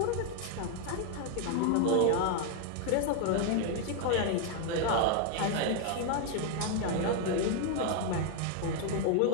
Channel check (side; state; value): both; different; correlation 0.01